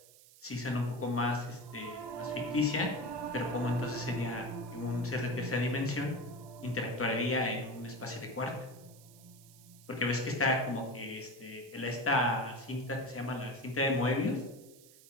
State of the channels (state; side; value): noise; right; hiss, 23 dB below the sound